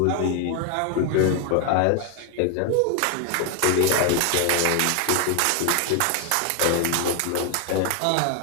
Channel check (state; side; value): different; both; correlation 0.01